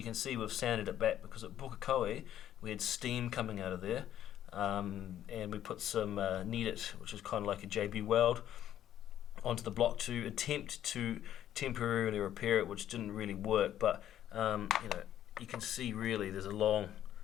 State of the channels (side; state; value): right; quieter; 11.3 dB